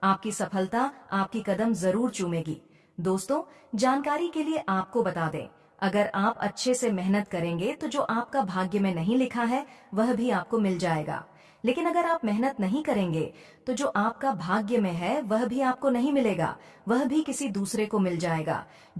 आपकी सफलता आपकी कदम जरूर चूमेगी। दोस्तों जानकारी के लिए आपको बता दें, अगर आप अच्छे से मेहनत करेंगे तो जो आपका भाग्य में नहीं लिखा है वह भी आपको मिल जाएगा। लेकिन अगर आप मेहनत नहीं करेंगे तो जो आपका भाग्य में है वह भी आपको नहीं मिलेगा, वह भी किसी दूसरे को मिल जाएगा।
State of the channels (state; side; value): identical; both; correlation 1.00